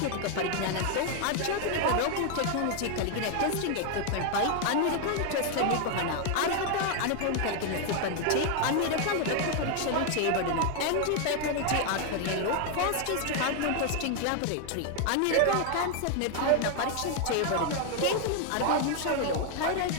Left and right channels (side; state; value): both; different; correlation 0.00